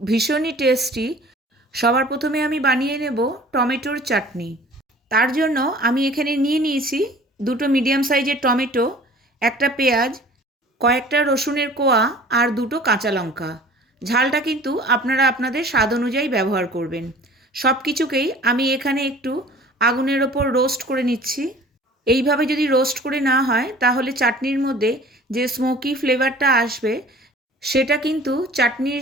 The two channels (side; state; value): both; normal; correlation 0.47